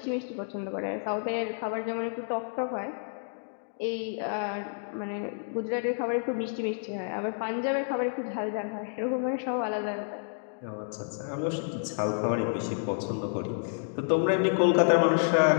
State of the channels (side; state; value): right; silent; digital silence